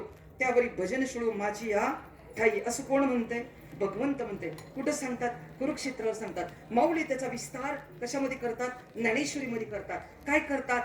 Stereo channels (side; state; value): both; identical; correlation 1.00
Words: त्यावरी भजन शिळो माझी या ठाई. असं कोण म्हणतंय? भगवंत म्हणते. कुठं सांगतात? कुरुक्षेत्रावर सांगतात. माऊली त्याचा विस्तार कशामध्ये करतात? ज्ञानेश्वरीमध्ये करतात. काय करतात?